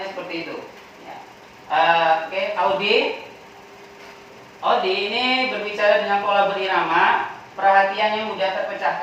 seperti itu. Ya. Oke, Audi ini berbicara dengan pola berirama, perhatiannya mudah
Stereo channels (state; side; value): identical; both; correlation 1.00